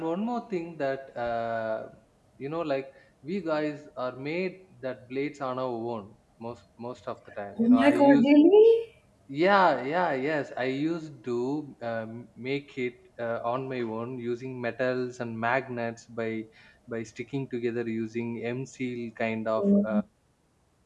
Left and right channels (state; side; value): identical; both; correlation 1.00